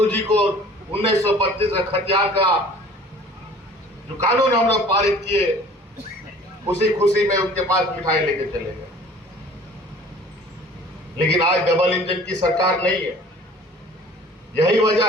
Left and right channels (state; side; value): normal; both; correlation 0.48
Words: को 1932 का खतियार का जो कानून हम लोग पारित किए, उसी खुशी में उनके पास मिठाई लेके चले गए। लेकिन आज डबल इंजन की सरकार नहीं है। यही वजह